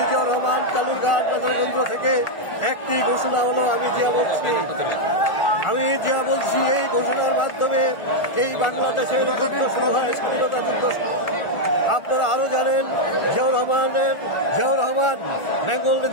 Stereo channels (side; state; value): right; late; 1.4 ms